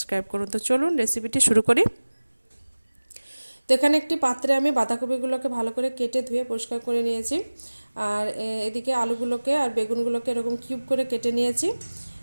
করুন। তো চলুন রেসিপিটি শুরু করি। তো এখানে একটি পাত্রে আমি বাঁধাকপিগুলোকে ভালো করে কেটে ধুয়ে পরিষ্কার করে নিয়েছি। আর এদিকে আলুগুলোকে আর বেগুনগুলোকে এরকম কিউব করে কেটে নিয়েছি।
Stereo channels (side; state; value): both; inverted; correlation -1.00